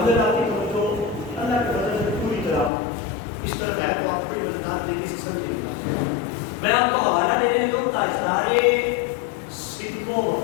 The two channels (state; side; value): drops out; right; at 2.7 s